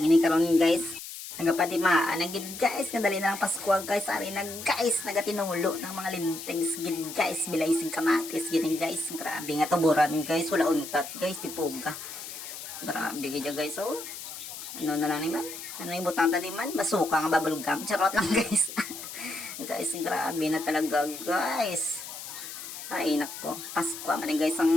karon guys. Nagapadimaan na gid guys, kadali na lang Pasko guys, ari na guys, nagatinulo ng mga lintings gid guys, bilay sing kamatis gini guys. Grabe nga tuburan guys, wala untat guys, tipuga. Grabe gid guys, oh. Ano na lang ni man? Ano yung butang tadi man? Basuka nga bubblegum. Charot lang guys. Guys, grabe na talaga guys. Ay nako, Pasko man guys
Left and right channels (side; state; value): left; noise; hiss, 10 dB below the sound